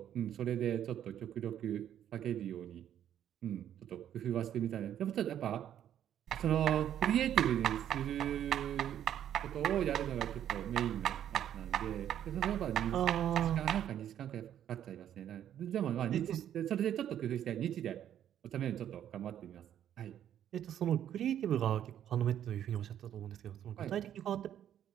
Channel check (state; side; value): quieter; left; 10.4 dB